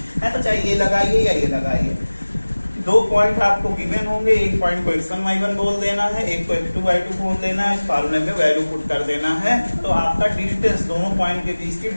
है। तो चाहे ये लगाइए या ये लगाइए, दो पॉइंट आपको गिवन होंगे, एक पॉइंट को x1 y1 बोल देना है, एक को x2 y2 बोल देना है, इस फार्मूले में वैल्यू पुट कर देना है, तो आपका डिस्टेंस दोनों पॉइंट के बीच की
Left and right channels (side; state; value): both; inverted; correlation -1.00